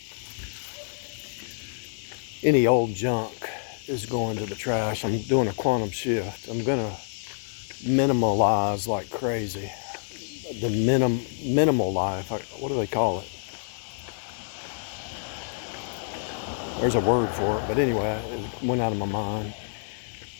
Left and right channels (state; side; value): silent; right; digital silence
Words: Any old junk is going to the trash. I'm doing a quantum shift. I'm gonna minimalize like crazy. The minimal life. What do they call it? There's a word for it, but anyway, it went out of my mind.